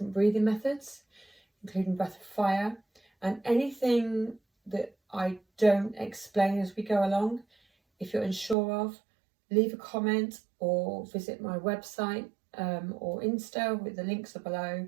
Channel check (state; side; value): drops out; left; at 8.6 s